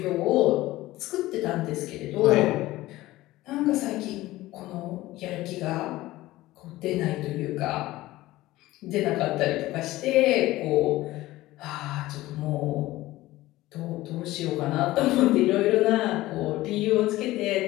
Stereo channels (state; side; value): quieter; right; 17.3 dB